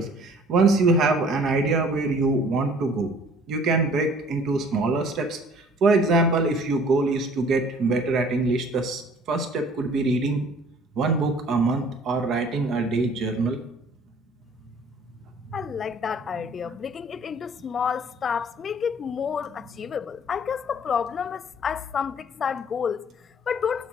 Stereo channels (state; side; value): normal; both; correlation 0.53